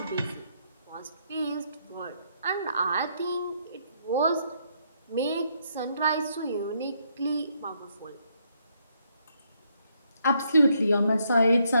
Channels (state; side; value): inverted; both; correlation -0.74